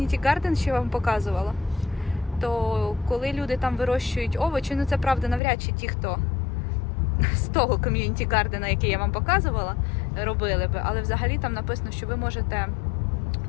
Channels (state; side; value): drops out; right; at 5.4 s